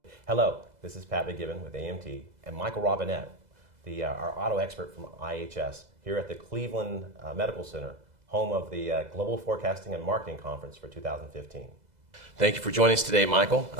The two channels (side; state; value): left; late; 2.0 ms